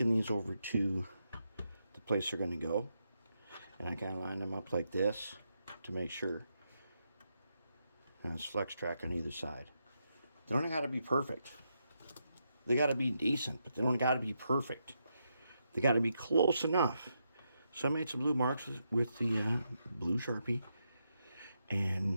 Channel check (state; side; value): inverted; both; correlation -0.82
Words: these over to the place they're going to go, and I kind of line them up like this to make sure. And it's flex track on either side. They don't got to be perfect. They got to be decent, but they don't got to be perfect. They got to be close enough. So I made some blue marks with the blue Sharpie,